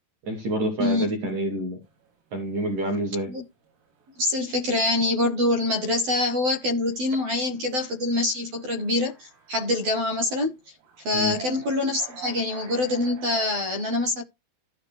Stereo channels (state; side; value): late; left; 12 ms